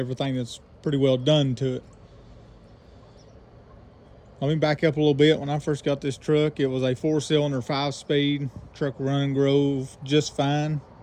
that's pretty well done to it. Let me back up a little bit. When I first got this truck, it was a 4-cylinder, 5-speed truck, running grove just fine.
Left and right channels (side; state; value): both; identical; correlation 1.00